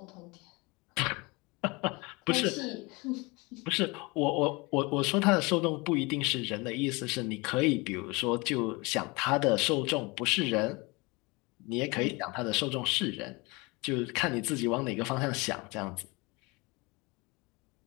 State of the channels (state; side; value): quieter; right; 26.0 dB